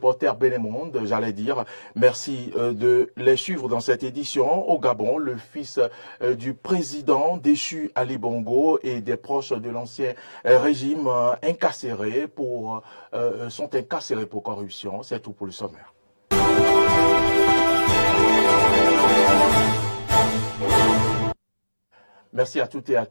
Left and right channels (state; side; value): inverted; both; correlation -1.00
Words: Bénin Monde, j'allais dire. Merci de les suivre dans cette édition. Au Gabon, le fils du président déchu Ali Bongo et des proches de l'ancien régime sont incarcérés pour corruption. C'est tout pour le sommaire. Merci à toutes et à